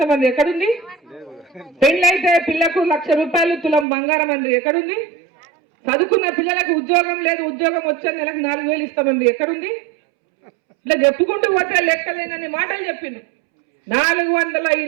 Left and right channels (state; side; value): drops out; left; at 3.9 s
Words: ఎక్కడుంది? పెళ్ళైతే పిల్లకు 1,00,000 రూపాయలు తులం బంగారం అండి ఎక్కడుంది? చదువుకున్న పిల్లలకు ఉద్యోగం లేదు, ఉద్యోగం వచ్చే నెలకు 4,000 ఇస్తామండి ఎక్కడుంది? ఇట్లా చెప్పుకుంటూ పోతే లెక్కలేనని మాటలు చెప్పిండు.